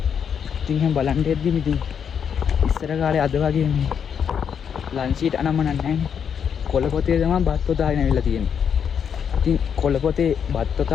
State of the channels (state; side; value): quieter; right; 7.5 dB